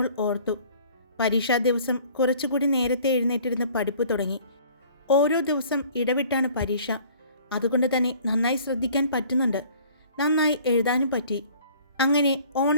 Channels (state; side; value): inverted; both; correlation -0.52